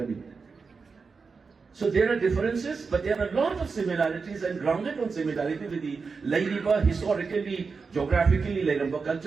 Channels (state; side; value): quieter; left; 4.9 dB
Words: So there are differences, but there are a lot of similarities and grounded on similarity with the Haidriba, historically, geographically, Haidriba